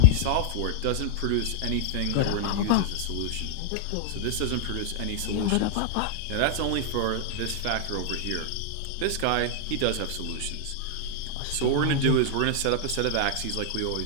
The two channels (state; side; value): different; both; correlation -0.01